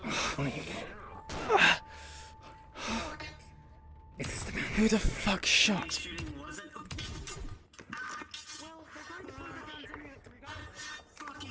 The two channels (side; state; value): both; identical; correlation 1.00